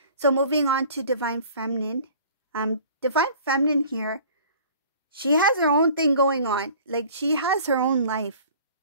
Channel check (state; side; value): inverted; both; correlation -0.48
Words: moving on to Divine Feminine. Divine Feminine here, she has her own thing going on. Like she has her own life,